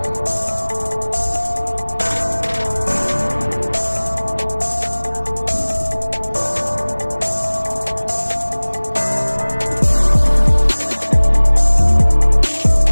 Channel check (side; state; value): both; inverted; correlation -1.00